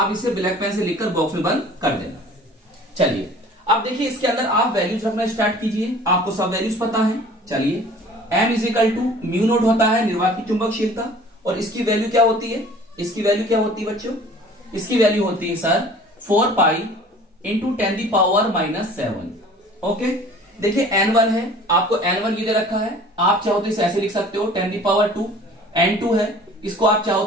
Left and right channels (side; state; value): both; normal; correlation 0.47